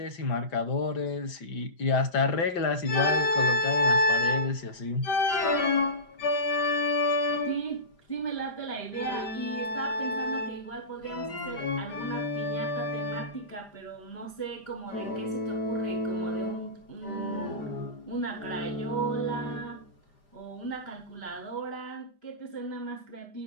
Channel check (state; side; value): late; right; 5.0 ms